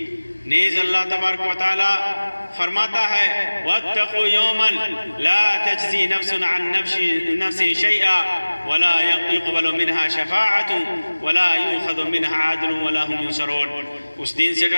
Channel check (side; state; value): both; inverted; correlation -1.00